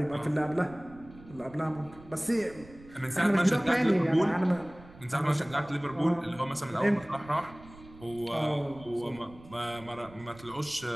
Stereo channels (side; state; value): right; noise; rumble, 21 dB below the sound